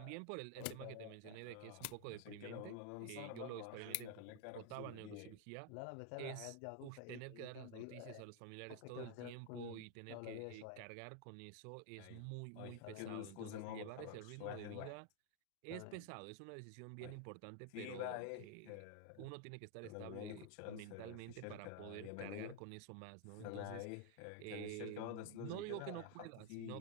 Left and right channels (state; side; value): different; both; correlation 0.00